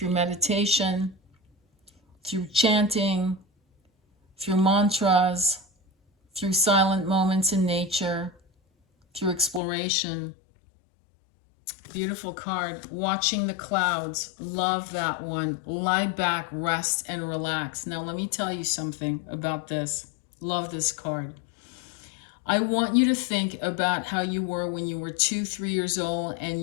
meditation, through chanting, through mantras, through silent moments in nature, through exploration. Beautiful card. Watching the clouds. Love that one. Lie back, rest, and relax. Now, let me tell you something about this. Love this card. I want you to think about how you were when you were 2-3 years old and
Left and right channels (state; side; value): drops out; right; at 9.6 s